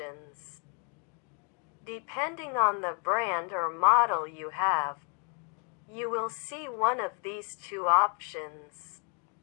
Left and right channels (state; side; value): quieter; right; 39.0 dB